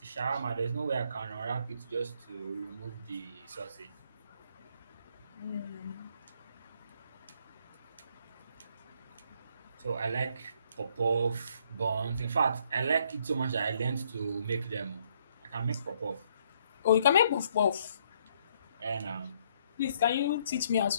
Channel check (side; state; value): both; inverted; correlation -0.69